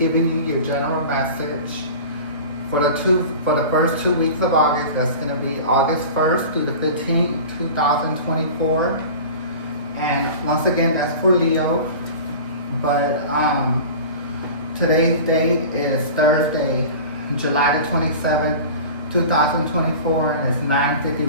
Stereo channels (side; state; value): both; inverted; correlation -0.36